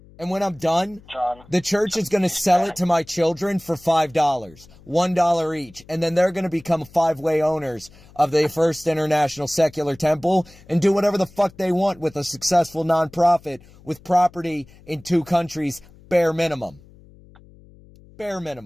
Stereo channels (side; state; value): left; noise; hum, 24 dB below the sound